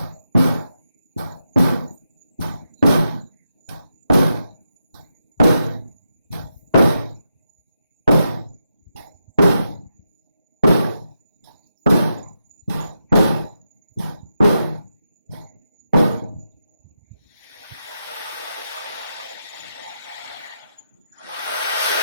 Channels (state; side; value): inverted; both; correlation -0.85